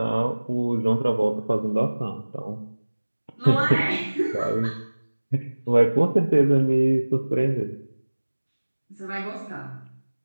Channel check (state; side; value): inverted; both; correlation -1.00